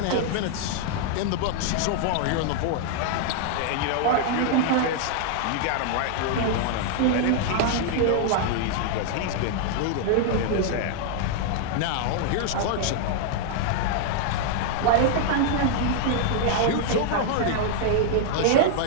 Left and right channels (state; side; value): different; both; correlation -0.01